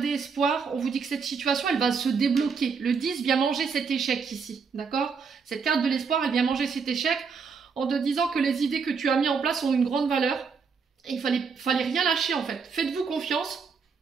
espoir. On vous dit que cette situation, elle va se débloquer. Le 10 vient manger cet échec ici. D'accord? Cette carte de l'espoir, elle vient manger cet échec en te disant que les idées que tu as mis en place ont une grande valeur. Et il fallait rien lâcher, en fait. Faites-vous confiance.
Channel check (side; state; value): left; quieter; 5.6 dB